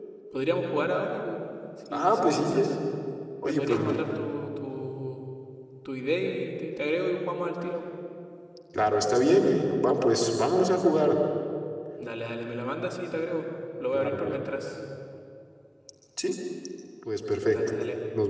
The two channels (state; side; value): identical; both; correlation 1.00